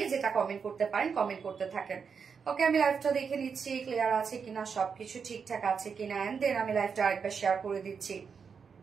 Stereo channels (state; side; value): quieter; left; 6.1 dB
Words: যেটা কমেন্ট করতে পারেন কমেন্ট করতে থাকেন। ওকে, আমি লাইভটা দেখে নিচ্ছি ক্লিয়ার আছে কিনা, সবকিছু ঠিকঠাক আছে কিনা, এন্ড দেন আমি লাইভটা আরেকবার শেয়ার করে দিচ্ছি।